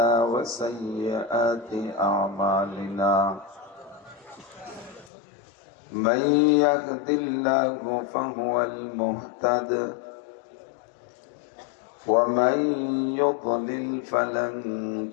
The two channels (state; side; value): drops out; right; at 5.1 s